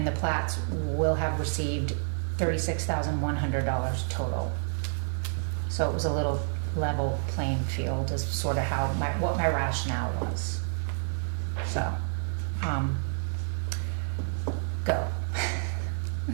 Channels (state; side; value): silent; left; digital silence